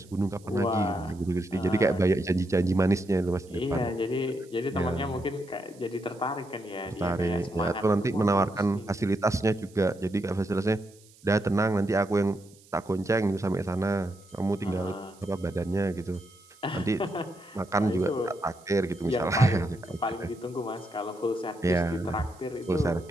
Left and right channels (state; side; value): noise; right; hiss, 26 dB below the sound